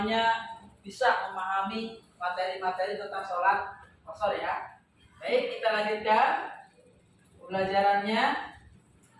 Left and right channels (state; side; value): identical; both; correlation 1.00